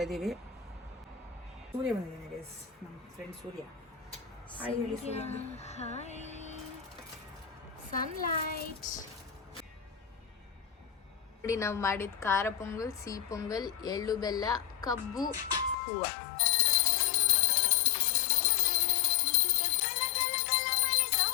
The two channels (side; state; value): right; drops out; at 15.8 s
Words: ಇದ್ದೀವಿ. ಸೂರ್ಯ ಬಂದಿದ್ದಾನೆ ಗೈಸ್, ನಮ್ಮ ಫ್ರೆಂಡ್ ಸೂರ್ಯ. ಹಾಯ್ ಹೇಳಿ ಸೂರ್ಯ. Hi sunlight. ನೋಡಿ ನಾವು ಮಾಡಿದ ಖಾರ ಪೊಂಗಲ್, ಸಿಹಿ ಪೊಂಗಲ್, ಎಳ್ಳು ಬೆಲ್ಲ, ಕಬ್ಬು, ಹೂವು.